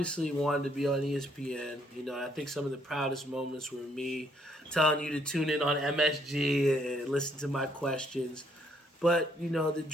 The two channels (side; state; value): both; normal; correlation 0.69